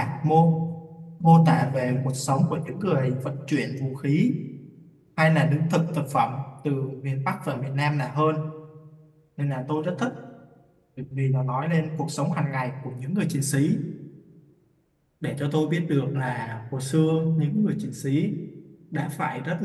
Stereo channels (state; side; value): identical; both; correlation 1.00